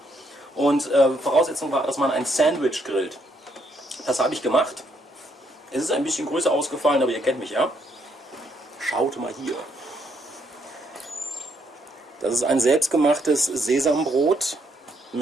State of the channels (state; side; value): normal; both; correlation 0.73